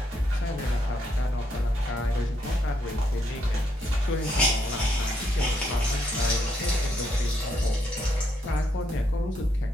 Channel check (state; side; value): normal; both; correlation 0.75